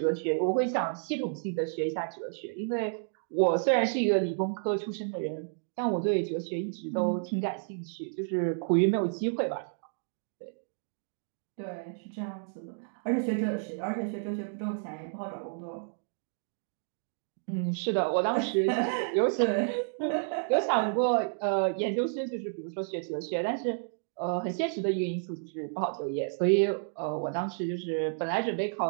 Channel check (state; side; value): silent; left; digital silence